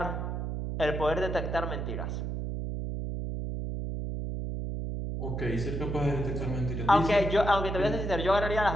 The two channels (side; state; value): right; noise; hum, 3 dB below the sound